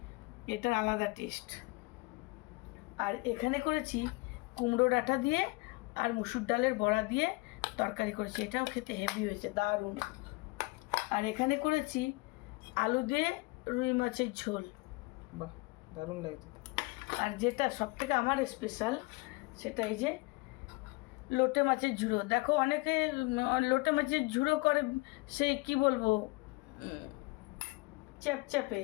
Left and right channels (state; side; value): quieter; right; 25.0 dB